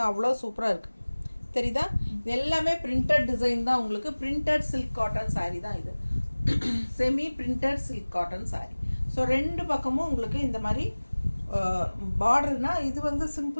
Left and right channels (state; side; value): inverted; both; correlation -1.00